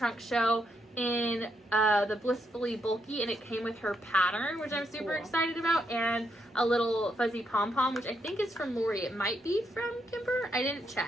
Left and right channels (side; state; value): both; normal; correlation 0.79